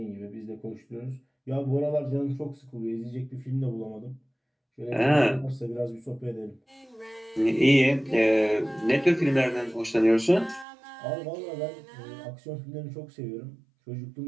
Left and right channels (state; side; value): drops out; left; at 10.7 s